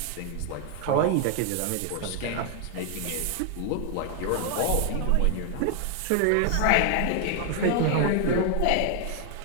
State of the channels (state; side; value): different; both; correlation 0.00